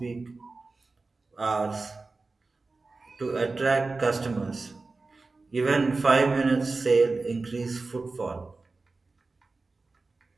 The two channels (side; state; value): left; quieter; 3.7 dB